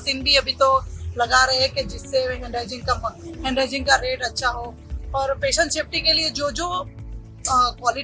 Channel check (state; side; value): identical; both; correlation 1.00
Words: भी अभी तो लगा रहे हैं कि जिससे हैंड हाइजीन का रेट अच्छा हो. और पेशेंट सेफ्टी के लिए जो